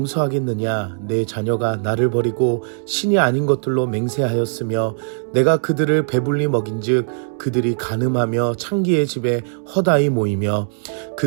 내 자녀가 나를 버리고 신이 아닌 것들로 맹세하였으며 내가 그들을 배불리 먹인즉 그들이 간음하며 창기의 집에 허다히 모이며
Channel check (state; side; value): silent; left; digital silence